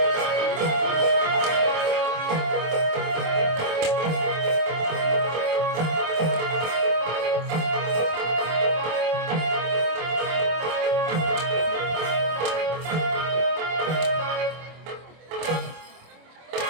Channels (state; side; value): late; left; 25 ms